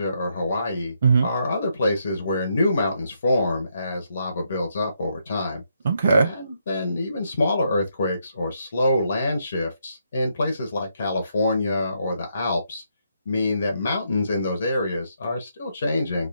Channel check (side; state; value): both; inverted; correlation -0.77